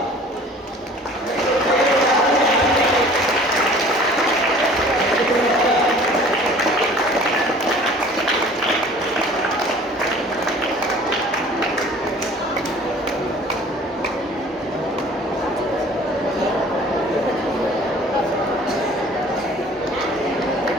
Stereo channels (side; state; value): both; normal; correlation 0.48